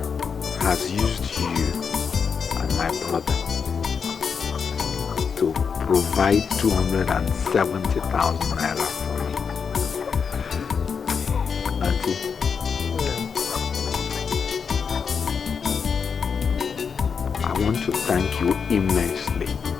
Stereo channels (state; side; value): quieter; right; 6.1 dB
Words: has used you and my brother to provide 270,000 naira for me. Auntie, I want to thank you immensely